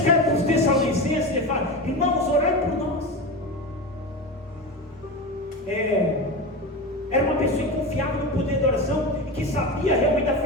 para os Tessalonicenses e fala: irmãos, orai por nós. Era uma pessoa confiável no poder da oração e que sabia realmente da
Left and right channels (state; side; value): normal; both; correlation 0.23